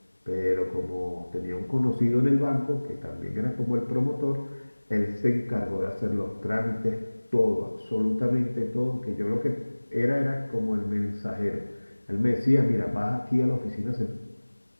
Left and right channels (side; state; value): both; inverted; correlation -1.00